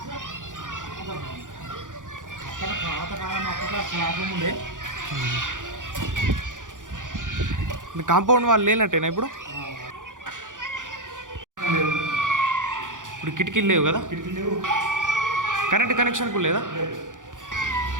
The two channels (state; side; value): late; left; 0.88 ms